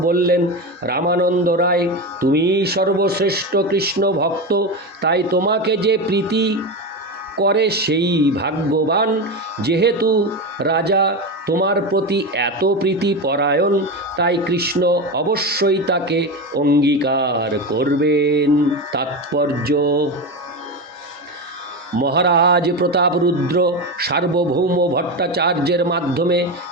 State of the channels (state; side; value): normal; both; correlation 0.18